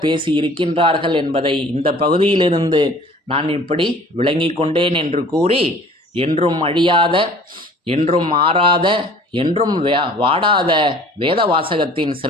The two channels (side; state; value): both; normal; correlation 0.49